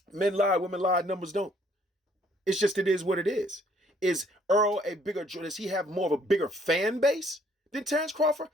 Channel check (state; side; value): normal; both; correlation 0.63